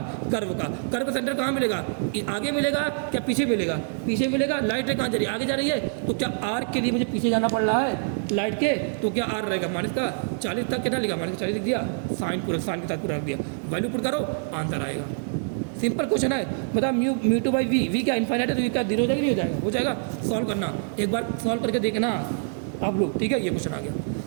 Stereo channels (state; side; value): silent; left; digital silence